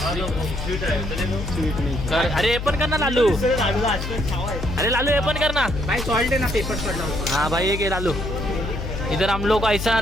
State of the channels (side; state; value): left; noise; hum, 5 dB below the sound